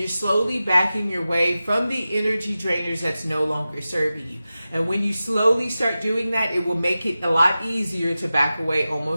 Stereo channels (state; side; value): inverted; both; correlation -0.94